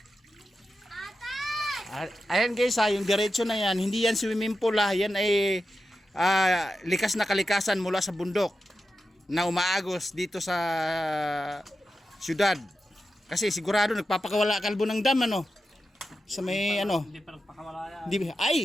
Ayan guys ha, yung diretso na yan, hindi yan swimming pool ha, yan ay likas na kalikasan mula sa bundok na umaagos dito sa syudad. Kasi sigurado nagpapakawala kalbo ng dam ano. Sa may ano. Hindi pa nagpakawala yan. Hindi, ay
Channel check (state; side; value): normal; both; correlation 0.90